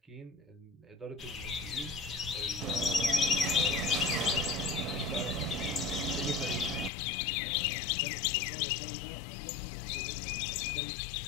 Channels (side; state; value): right; drops out; at 6.9 s